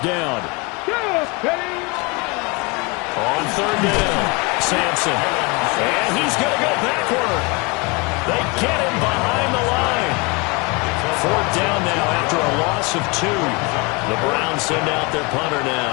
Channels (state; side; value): quieter; right; 27.8 dB